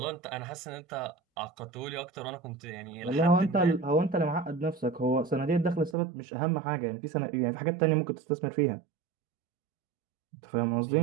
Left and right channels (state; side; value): drops out; left; at 6.0 s